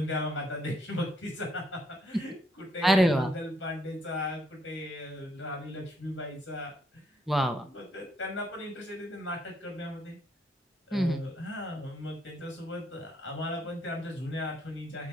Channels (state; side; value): normal; both; correlation 0.72